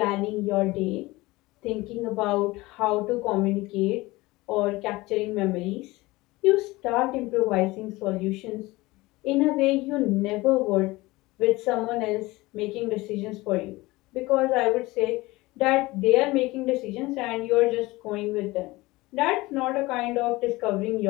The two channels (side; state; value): right; quieter; 20.7 dB